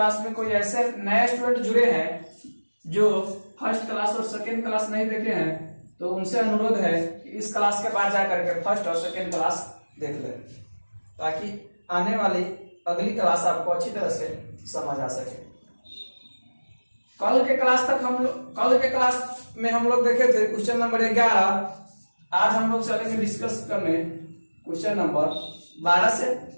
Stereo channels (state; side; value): inverted; both; correlation -1.00